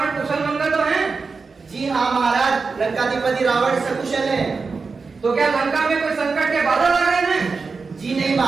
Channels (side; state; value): left; quieter; 4.6 dB